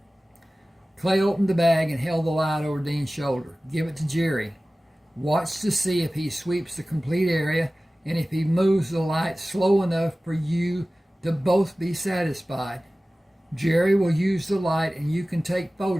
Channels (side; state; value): both; normal; correlation 0.97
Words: Clay opened the bag and held the light over Dean's shoulder. Give it to Jerry. Watch to see if he sweeps the complete area and if he moves the light slow enough for you to both be satisfied. Jerry will use the light and you can take